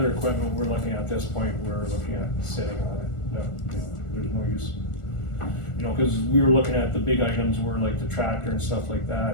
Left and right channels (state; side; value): late; right; 1.4 ms